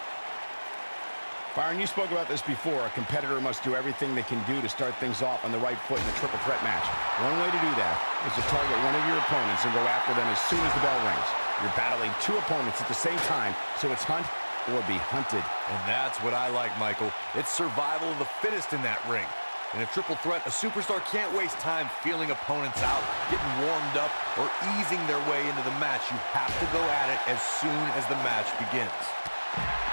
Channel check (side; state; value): both; inverted; correlation -1.00